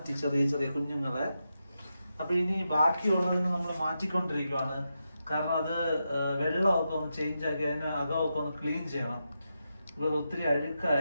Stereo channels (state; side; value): inverted; both; correlation -0.87